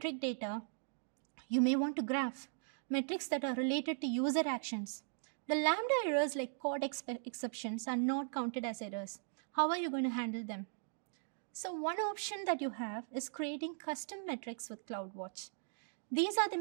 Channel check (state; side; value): silent; left; digital silence